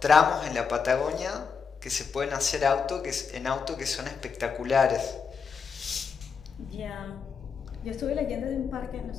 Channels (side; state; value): right; quieter; 5.9 dB